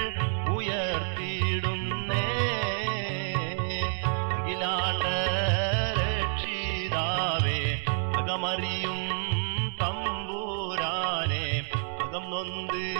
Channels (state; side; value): silent; left; 58 dB below the other